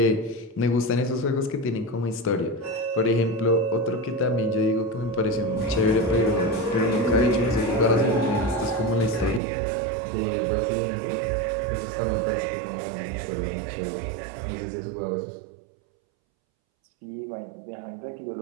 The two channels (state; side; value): drops out; left; at 9.4 s